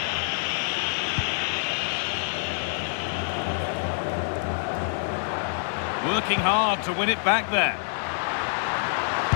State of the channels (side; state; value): right; silent; 61 dB below the other